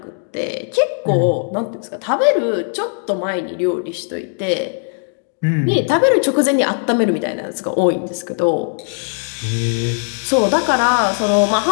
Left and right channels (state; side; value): silent; right; digital silence